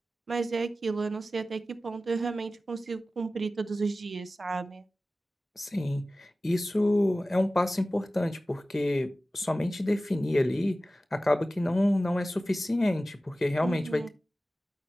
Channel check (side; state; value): both; normal; correlation 0.96